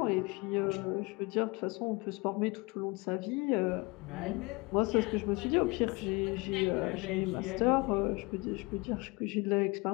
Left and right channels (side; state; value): right; quieter; 26.3 dB